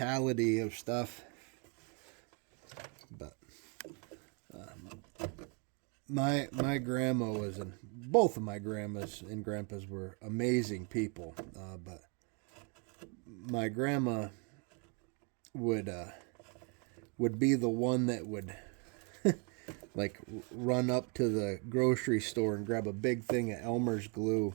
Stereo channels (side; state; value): left; quieter; 36.2 dB